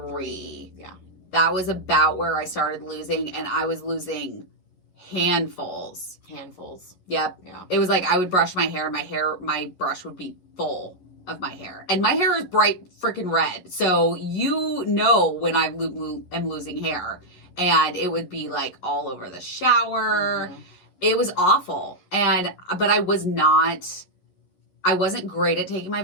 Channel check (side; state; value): right; late; 11 ms